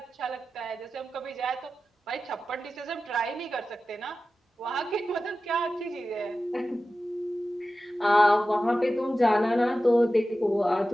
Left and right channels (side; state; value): both; normal; correlation 0.94